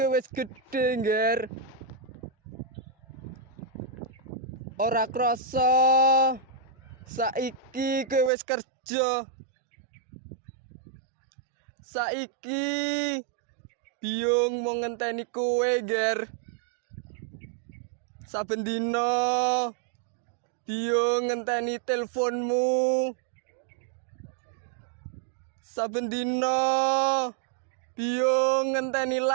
wis gedhe, Ger. Ora krasa saiki kowe wis kerja. Saiki Biyung mau ngenteni kowe, Ger. Saben dina Biyung ngenteni teleponmu. Saben dina Biyung ngenteni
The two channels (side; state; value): left; drops out; at 8.3 s